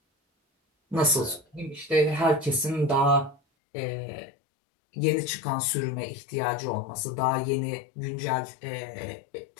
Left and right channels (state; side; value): drops out; right; at 3.4 s